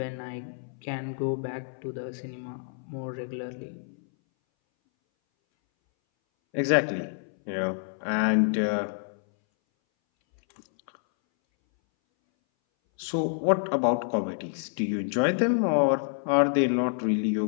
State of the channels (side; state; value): right; silent; 59 dB below the other